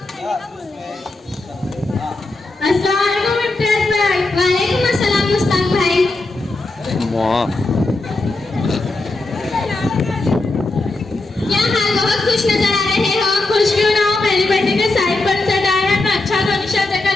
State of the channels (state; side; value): quieter; right; 3.0 dB